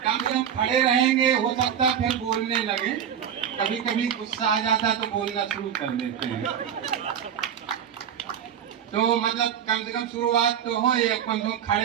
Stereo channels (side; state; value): left; quieter; 8.9 dB